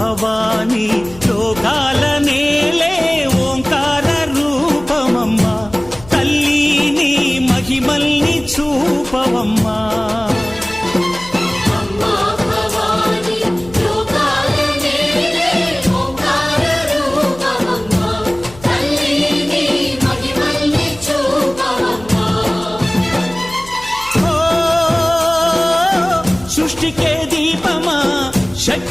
లోకాల నేలే ఓంకార రూపమమ్మా తల్లి నీ మహిమల్ని చూపవమ్మా సృష్టికే దీపమా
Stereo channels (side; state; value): left; noise; hum, 20 dB below the sound